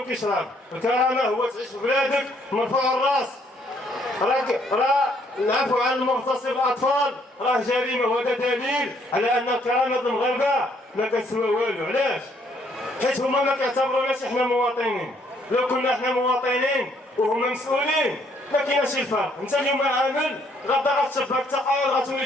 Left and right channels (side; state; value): both; normal; correlation 0.67